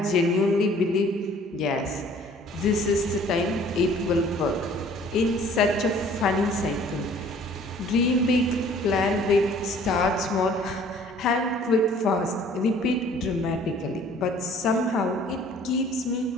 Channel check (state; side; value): normal; both; correlation 0.54